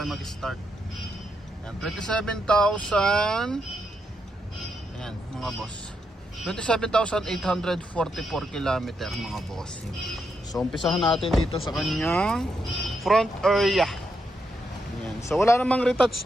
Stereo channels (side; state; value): both; normal; correlation 0.81